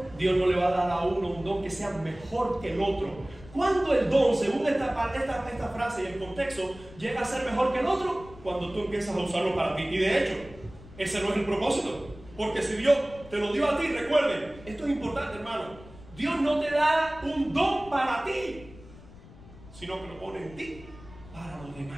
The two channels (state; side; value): noise; left; rumble, 19 dB below the sound